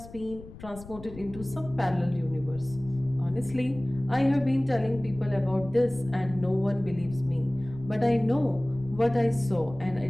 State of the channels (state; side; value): noise; left; rumble, 16 dB below the sound